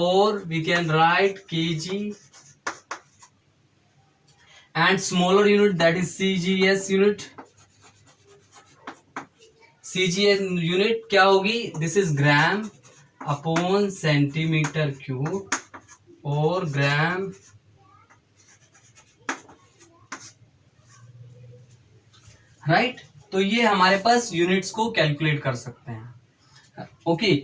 we can write KG, and smaller unit that is CGS unit. CGS unit क्या होगी? This is gram upon centimetre cube, और gram right. तो ये हमारे पास यूनिट्स को कैलकुलेट कर सकते हैं। ओके,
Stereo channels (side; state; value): both; identical; correlation 1.00